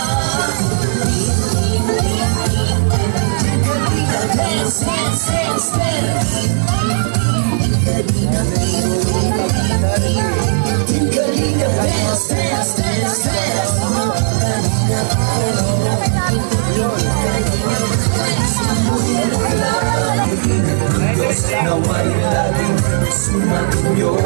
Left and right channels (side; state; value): left; silent; digital silence